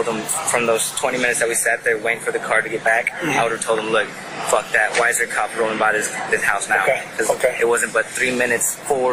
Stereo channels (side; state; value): both; identical; correlation 1.00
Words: them from those 20 minutes that we sat there waiting for the car to get back, I would have told them, look, fuck that. Why is there a cop rolling by this house now? Because it wasn't but 3 minutes, 4